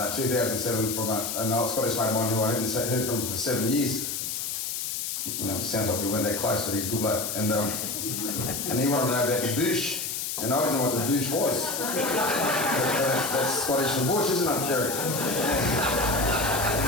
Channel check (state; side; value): noise; left; hiss, 3 dB below the sound